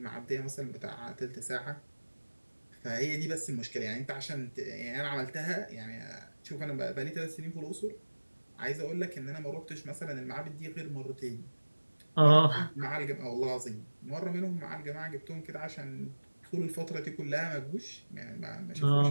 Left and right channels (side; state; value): both; inverted; correlation -1.00